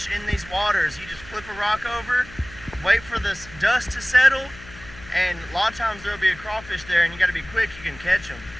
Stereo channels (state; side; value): noise; left; hum, 18 dB below the sound